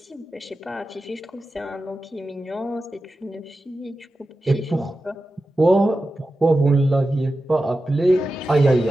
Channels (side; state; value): both; normal; correlation 0.92